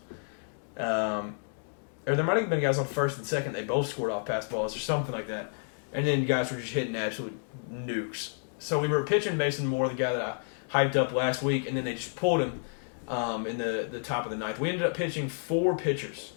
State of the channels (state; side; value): silent; right; digital silence